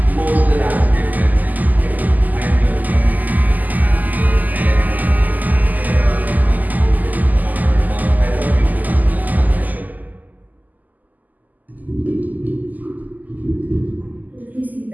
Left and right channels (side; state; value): left; late; 0.082 ms